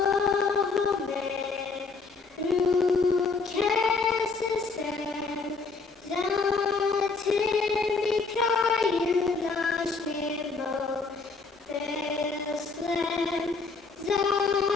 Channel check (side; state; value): right; quieter; 4.3 dB